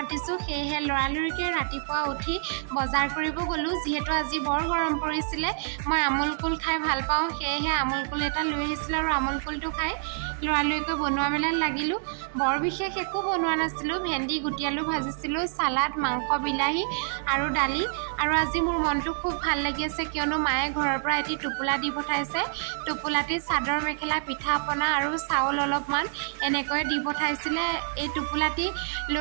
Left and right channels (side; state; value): left; silent; digital silence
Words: সেয়েহে লৰালৰিকৈ ৰাতিপুৱা উঠি বজাৰ কৰিব গ'লোঁ। যিহেতু আজি বৰ গৰম পৰিছিলে, মই আমুল কুল খাই ভাল পাওঁ, সেয়েহে আমুল কুল এটা লৈ আহিছিলোঁ আৰু আমুল কুলটো খাই লৰালৰিকৈ বনোৱা মেলাত লাগিলোঁ। বৰ বিশেষ একো বনোৱা নাছিলোঁ, ভেন্দি গুটি আলু ভাজিছিলোঁ, চালাড, মাংস, বিলাহী আৰু দালি। আৰু আজি মোৰ মনটো খুব ভাল লাগি আছে, কিয়নো মায়ে ঘৰৰ পৰা এটি টোপোলা দি পঠাইছে। টোপোলাটিত চাদৰ মেখেলা, পিঠা পনা আৰু চাউল অলপমান এনেকৈ দি পঠাইছিলে। এই টোপোলাটি